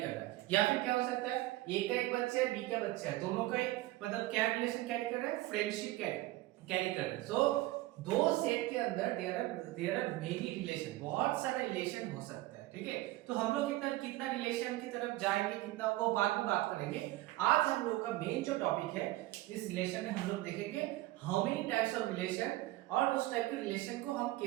रहा है। या फिर क्या हो सकता है, ए का एक बच्चा है, बी का बच्चा है, दोनों का मतलब क्या रिलेशन कैरी कर रहा है, फ्रेंडशिप कैरी कर रहे हैं। सो दो सेट के अंदर देयर आर मेनी रिलेशन, बहुत सारे रिलेशन हो सकता है। ठीक है, तो हम लोग कितना रिलेशन की तरफ जाएंगे, कितना वो बाद में बात करेंगे। आज हम लोग का मेन जो टॉपिक है इस रिलेशन में हम लोग देखेंगे how many types of relation, और उस टाइप के रिलेशन को हम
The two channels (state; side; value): quieter; left; 17.9 dB